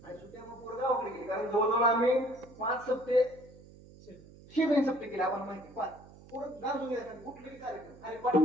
आणि सुट्ट्या मग पुढे गावाकडे गेली. कारण जवळजवळ आम्ही 5 सप्ते 6 सप्ते केले. आपण माहिती 5 पुढं गाजून घ्यायचं कुठलेही कार्यक्रम आणि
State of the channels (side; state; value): right; noise; hum, 21 dB below the sound